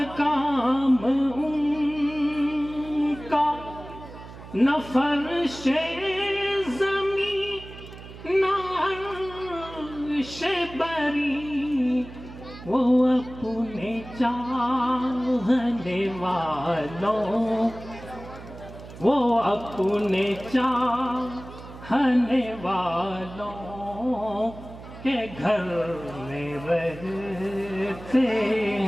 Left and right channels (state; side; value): noise; right; hum, 15 dB below the sound